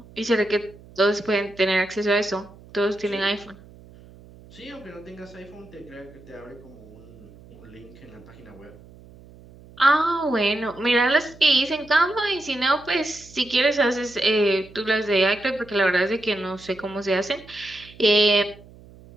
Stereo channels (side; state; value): right; noise; hum, 22 dB below the sound